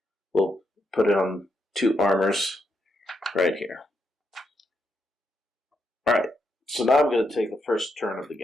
we'll put it on 2 armors right here. Alright, so now I'm going to take the first turn of the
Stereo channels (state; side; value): normal; both; correlation 0.80